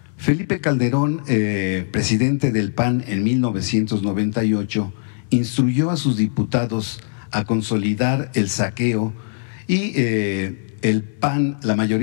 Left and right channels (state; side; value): silent; right; digital silence